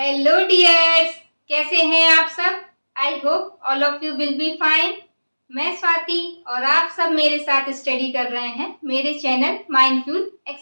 dears, कैसे हैं आप सब। I hope all of you will be fine. मैं स्वाति और आप सब मेरे साथ स्टडी कर रहे हैं मेरे चैनल माइंडफुल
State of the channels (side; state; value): both; inverted; correlation -1.00